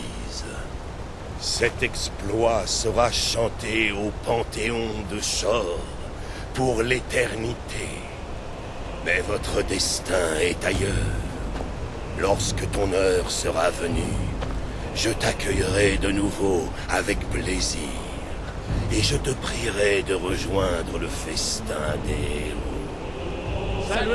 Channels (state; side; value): identical; both; correlation 1.00